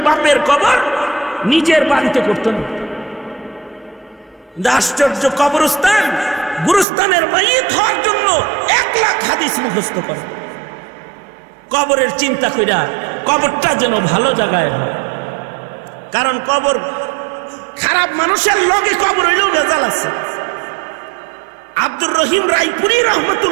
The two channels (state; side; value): drops out; left; at 6.9 s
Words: বাপের কবর নিজের বাড়িতে করত না। আশ্চর্য, কবরস্থান গুরুস্থানের মাইয়িত হওয়ার জন্য 1 লাখ হাদিস মুখস্থ করে, কবরের চিন্তা কইরা কবরটা যেন ভালো জায়গায় হয়। কারণ কবর খারাপ মানুষের লগে কবর হইলেও ভেজাল আছে। আব্দুর রহিম রায়পুরি